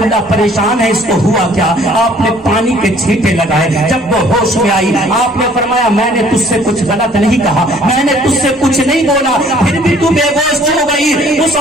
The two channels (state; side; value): normal; both; correlation 0.57